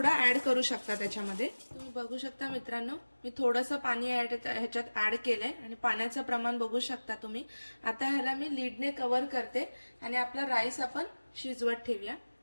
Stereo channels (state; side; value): inverted; both; correlation -1.00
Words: ऍड करू शकता त्याच्यामध्ये। तुम्ही बघू शकता मित्रांनो, मी थोडंसं पाणी ह्याच्यात ऍड केलंय आणि पाण्याचं प्रमाण बघू शकता तुम्ही। आता ह्याला मी लीडने कव्हर करते आणि आपला राईस आपण शिजवत ठेवूया।